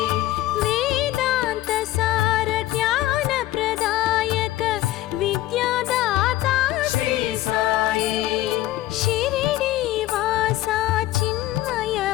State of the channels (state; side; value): quieter; right; 15.3 dB